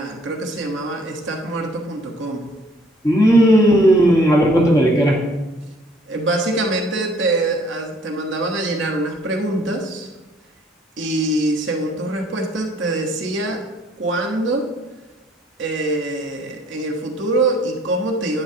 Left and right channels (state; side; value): normal; both; correlation 0.60